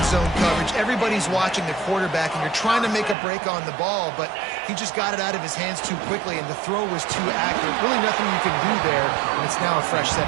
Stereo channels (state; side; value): drops out; left; at 3.2 s